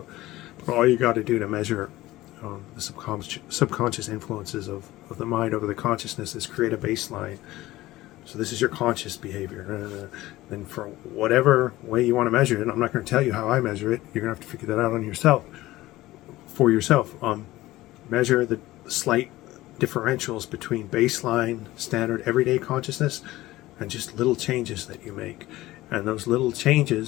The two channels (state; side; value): quieter; right; 17.3 dB